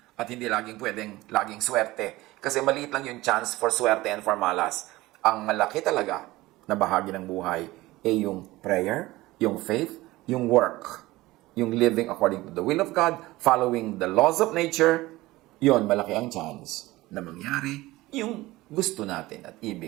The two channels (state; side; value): quieter; left; 18.8 dB